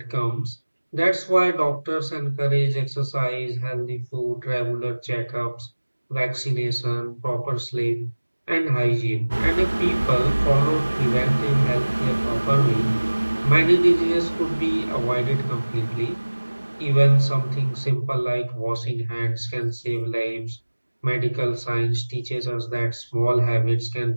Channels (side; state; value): both; inverted; correlation -1.00